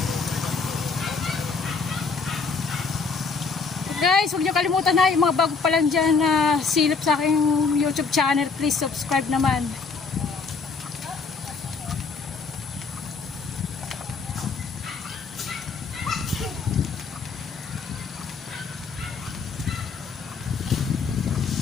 Guys, huwag niyo kalimutan na yung mga bago pa lang dyan na silip sa aking YouTube channel. Please subscribe naman.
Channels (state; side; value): quieter; right; 4.8 dB